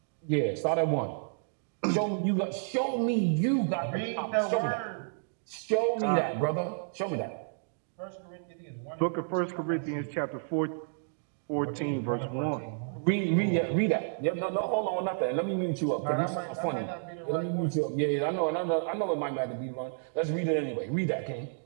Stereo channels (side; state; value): left; silent; digital silence